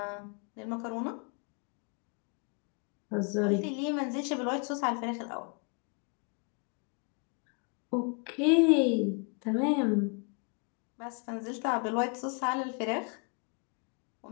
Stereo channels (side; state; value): right; quieter; 37.1 dB